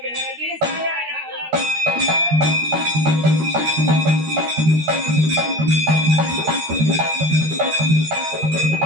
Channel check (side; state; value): left; late; 13 ms